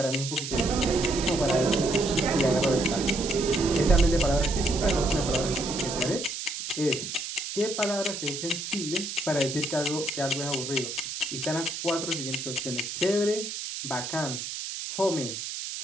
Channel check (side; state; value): right; noise; hiss, 6 dB below the sound